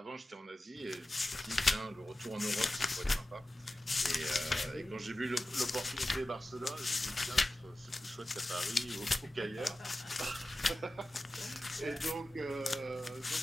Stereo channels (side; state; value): both; normal; correlation 0.94